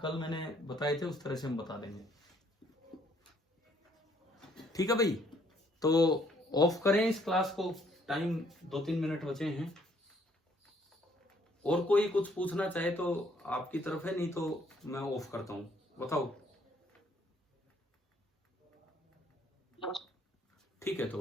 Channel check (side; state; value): both; normal; correlation 0.65